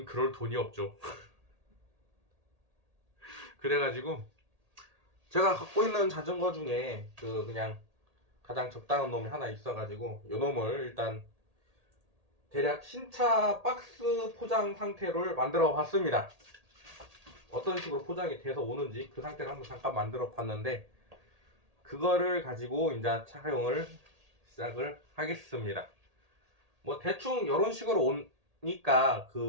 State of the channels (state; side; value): late; left; 1.8 ms